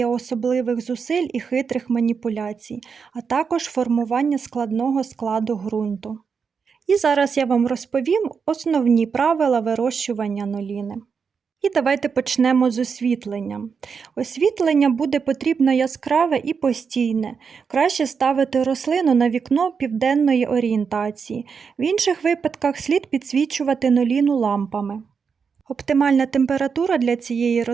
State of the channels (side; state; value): left; quieter; 5.9 dB